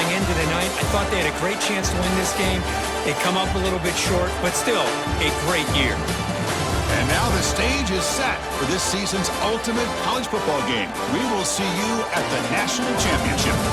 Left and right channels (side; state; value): both; identical; correlation 1.00